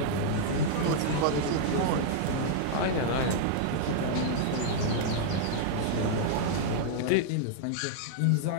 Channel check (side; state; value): both; different; correlation -0.01